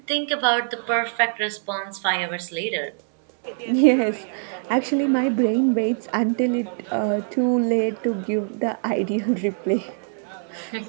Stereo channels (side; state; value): left; silent; 60 dB below the other